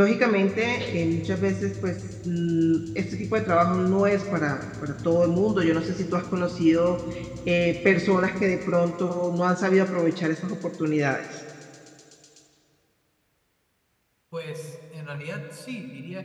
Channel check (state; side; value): identical; both; correlation 1.00